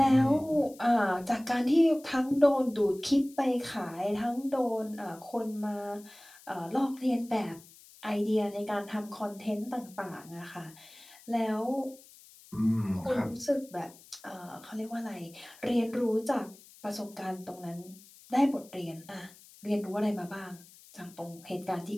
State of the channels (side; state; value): left; noise; hiss, 22 dB below the sound